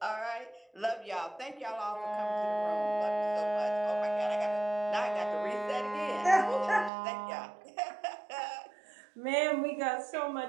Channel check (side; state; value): left; drops out; at 6.9 s